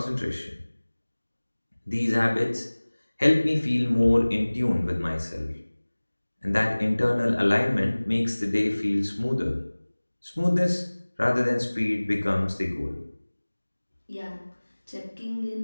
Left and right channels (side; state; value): both; inverted; correlation -1.00